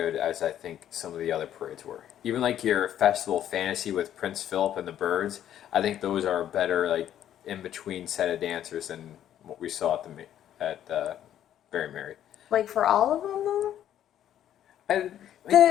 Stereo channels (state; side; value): quieter; right; 11.0 dB